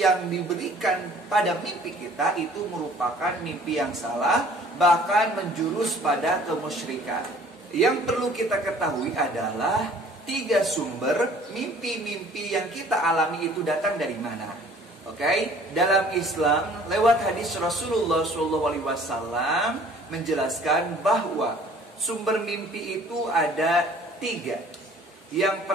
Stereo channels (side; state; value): both; normal; correlation 0.53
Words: diberikan pada mimpi kita itu merupakan mimpi yang salah, bahkan menjurus pada kemusyrikan. Yang perlu kita ketahui adalah 3 sumber mimpi-mimpi yang kita alami itu datang dari mana. Oke, dalam Islam lewat hadis Rasulullah SAW menjelaskan bahwa sumber mimpi itu ada 3. Yang